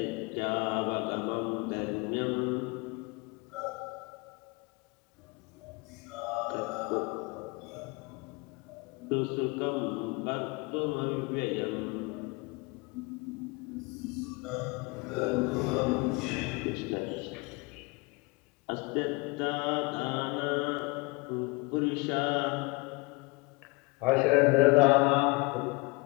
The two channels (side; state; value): right; quieter; 26.8 dB